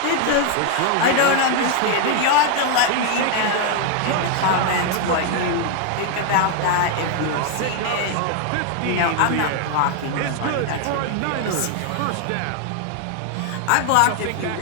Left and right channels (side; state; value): both; different; correlation 0.00